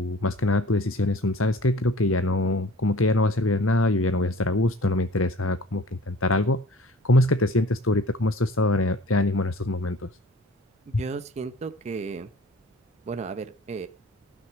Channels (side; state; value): both; normal; correlation 0.47